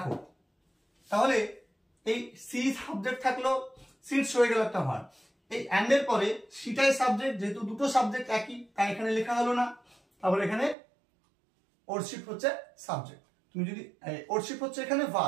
তাহলে এই সি সাবজেক্ট থাকলো, সিটস হয়ে গেল একটা ভার্ব, এই অ্যান্ড এর পরে সিটাই সাবজেক্ট, যেহেতু দুটো সাবজেক্ট একই তাই এখানে লেখা হলো না। তারপর এখানে ওরশিপ হচ্ছে সাবজেক্ট, তুমি যদি ওরশিপ হচ্ছে এখানে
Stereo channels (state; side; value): drops out; left; at 10.8 s